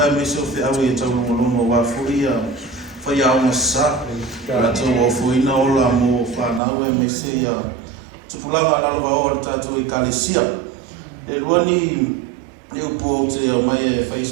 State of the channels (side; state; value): left; drops out; at 6.6 s